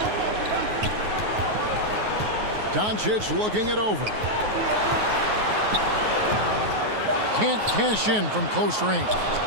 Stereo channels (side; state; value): left; late; 9.4 ms